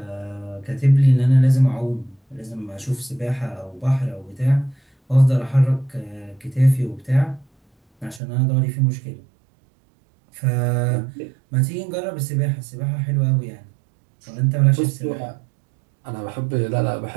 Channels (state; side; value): drops out; left; at 8.2 s